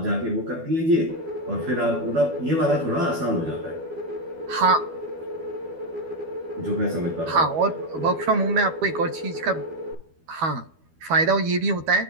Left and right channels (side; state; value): left; late; 12 ms